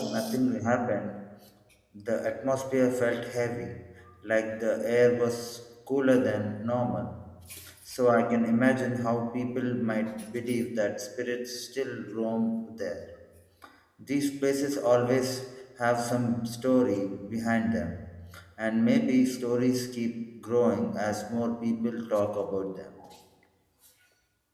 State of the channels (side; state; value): both; identical; correlation 1.00